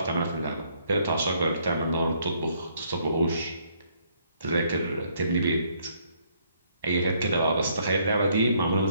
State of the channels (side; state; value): both; inverted; correlation -0.68